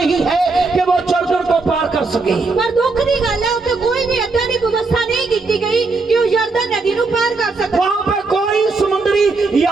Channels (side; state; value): left; quieter; 3.9 dB